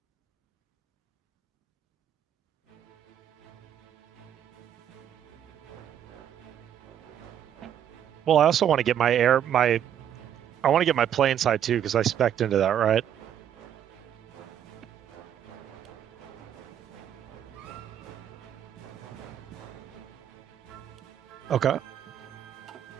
Well, I also want to get I want to get my plane side too because I spec'd into that, right? Okay.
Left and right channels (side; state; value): left; quieter; 9.8 dB